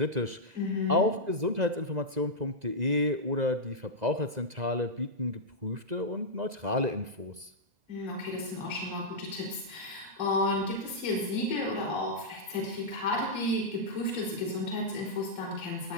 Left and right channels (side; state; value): left; late; 2.0 ms